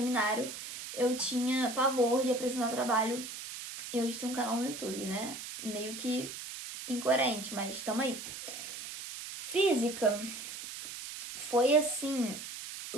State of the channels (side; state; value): right; noise; hiss, 9 dB below the sound